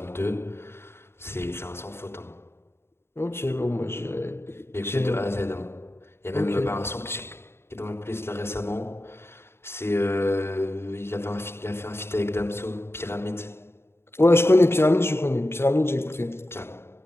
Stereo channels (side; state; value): right; late; 0.12 ms